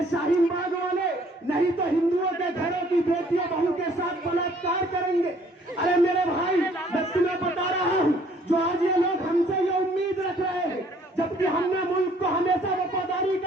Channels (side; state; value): both; normal; correlation 0.60